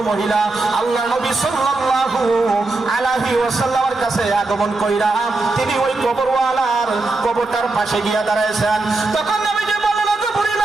মহিলা আল্লাহর নবী সাল্লাল্লাহু আলাইহি ওয়াসাল্লামের কাছে আগমন কইরা তিনি ওই কবরওয়ালার কবরটার পাশে গিয়া দাঁড়াইছেন। তখন নবীজি বললেন, ওগো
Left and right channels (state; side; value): quieter; left; 3.3 dB